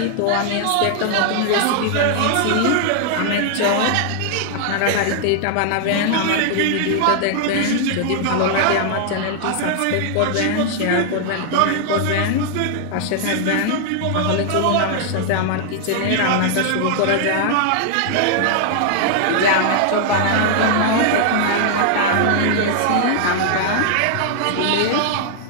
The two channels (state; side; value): different; both; correlation 0.00